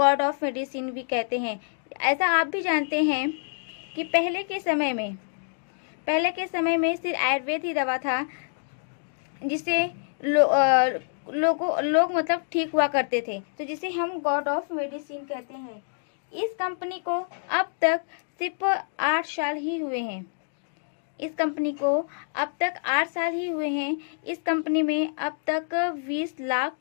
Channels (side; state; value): right; silent; digital silence